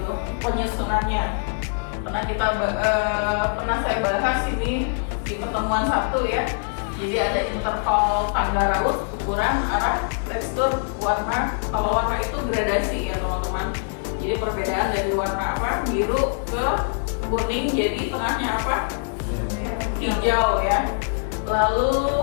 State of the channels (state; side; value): silent; right; digital silence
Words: penyusunannya. Pernah saya bahas ini di pertemuan Sabtu ya. Jadi ada interval tangga raut, ukuran, arah, tekstur, warna. Kalau warna itu gradasi ya teman-teman. Jadi perbedaan dari warna apa, biru ke kuning, jadi tengahnya apa, hijau ya. Lalu